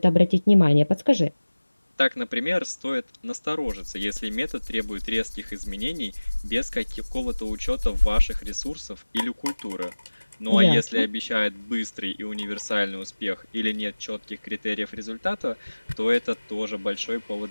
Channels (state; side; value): inverted; both; correlation -1.00